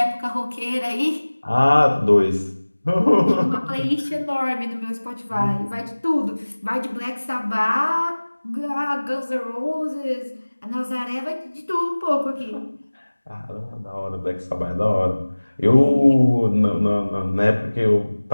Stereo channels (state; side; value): inverted; both; correlation -1.00